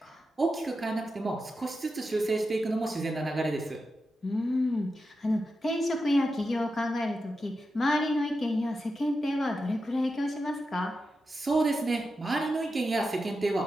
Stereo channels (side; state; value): both; normal; correlation 0.89